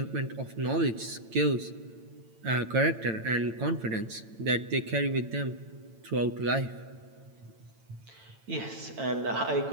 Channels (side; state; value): left; late; 9.0 ms